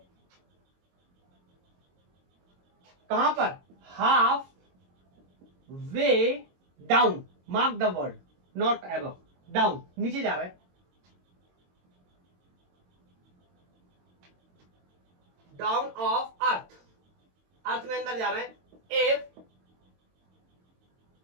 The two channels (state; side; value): late; left; 22 ms